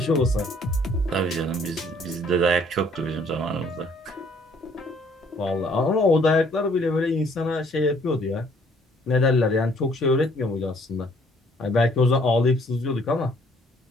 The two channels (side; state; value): both; normal; correlation 0.62